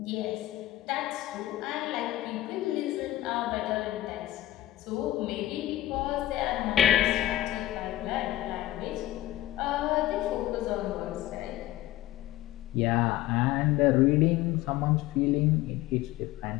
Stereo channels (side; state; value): right; quieter; 15.4 dB